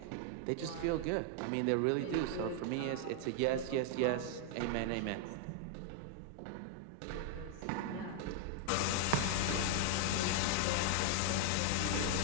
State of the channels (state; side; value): different; both; correlation 0.00